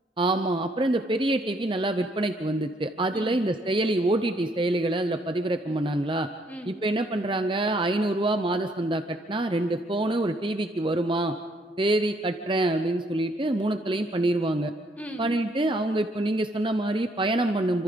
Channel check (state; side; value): normal; both; correlation 0.68